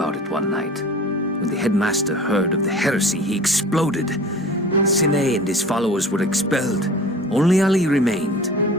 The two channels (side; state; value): both; normal; correlation 0.41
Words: it one night. When the headmaster heard of the heresy, he exploded. Sine and his followers were expelled. Only Ali remained,